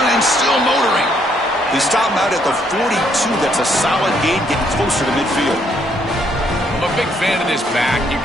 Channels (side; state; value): both; normal; correlation 0.70